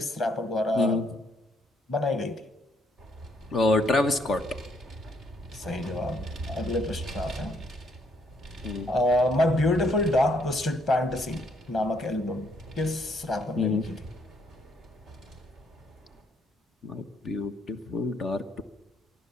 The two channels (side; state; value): both; normal; correlation 0.70